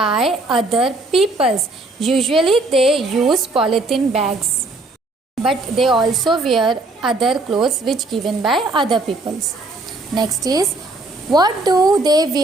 other peoples. Usually they use polythene bags, but they also wear other clothes which given by other peoples. Next is, what do they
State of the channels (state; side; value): quieter; left; 3.0 dB